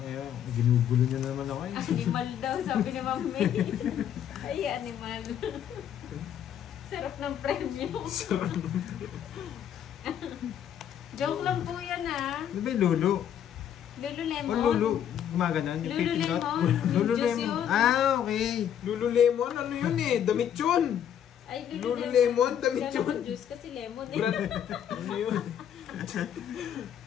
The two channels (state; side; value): quieter; right; 9.6 dB